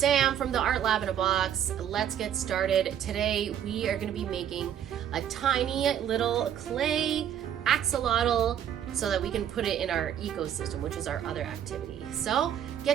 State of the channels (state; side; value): quieter; left; 9.7 dB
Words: from the Art Lab in a Box. Let's get started. Today we are going to be making a tiny little clay axolotl so that we can put it in our ecosystem, which is our other activity. So